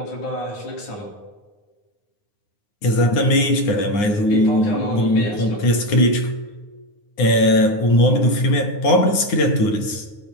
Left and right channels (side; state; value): right; late; 9.6 ms